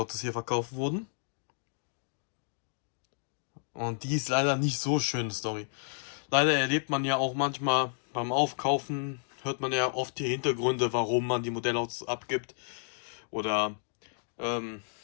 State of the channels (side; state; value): right; silent; digital silence